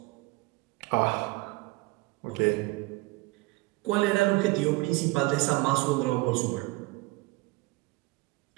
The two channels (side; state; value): left; quieter; 22.9 dB